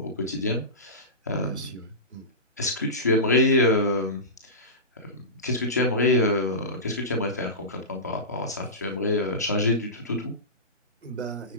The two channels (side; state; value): both; normal; correlation -0.20